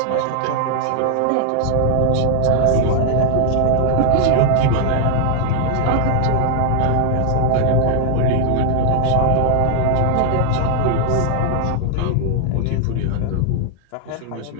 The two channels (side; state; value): both; different; correlation 0.00